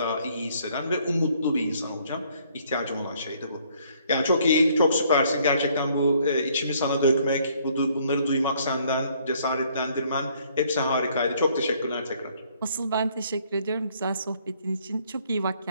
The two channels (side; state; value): both; inverted; correlation -0.64